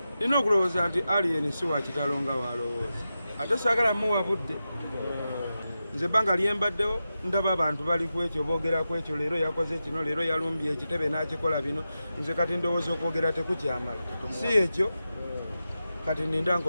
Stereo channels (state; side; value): inverted; both; correlation -0.91